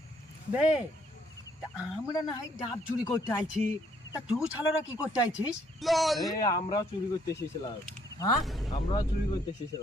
বে, তা আমরা না হয় ডাব চুরি করতে আইছি, তা তুই ছালারা কি করতে আইছিস? এই আমরাও চুরি করতে এসেছিলাম, হ্যাঁ, আমরাও চুরি করতে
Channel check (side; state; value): both; normal; correlation 0.67